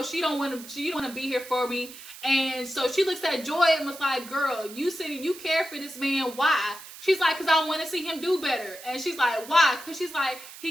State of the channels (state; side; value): noise; right; hiss, 15 dB below the sound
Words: she don't want to be here for me. And so she looks at Joy and was like, girl, you said you care for this man. Why? She's like, because I want to see him do better. And she's like, why? Because she's like, he